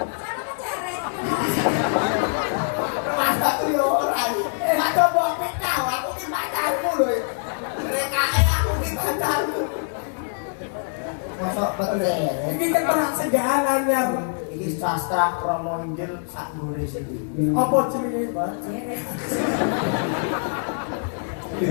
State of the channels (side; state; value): right; silent; digital silence